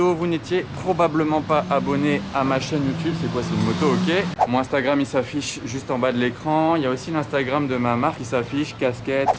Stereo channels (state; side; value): identical; both; correlation 1.00